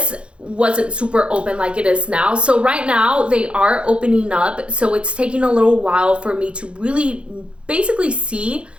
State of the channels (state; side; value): late; left; 0.058 ms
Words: wasn't super open like it is now. So right now they are opening up. So it's taking a little while for me to really basically see